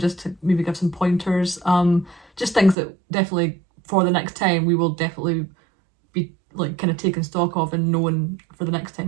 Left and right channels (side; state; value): left; drops out; at 2.8 s